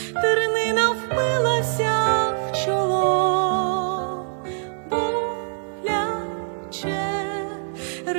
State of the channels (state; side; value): silent; left; digital silence